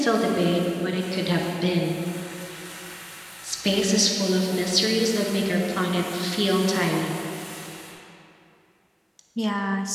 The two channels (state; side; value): identical; both; correlation 1.00